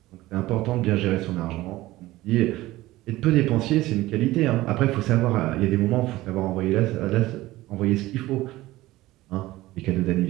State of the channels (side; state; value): left; quieter; 17.5 dB